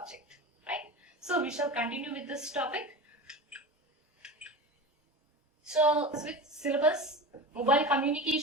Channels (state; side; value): normal; both; correlation 0.29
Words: right? So we shall continue with this topic. So with syllabus, mobile